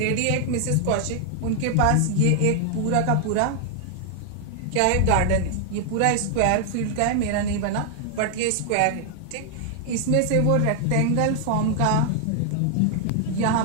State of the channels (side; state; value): both; different; correlation 0.00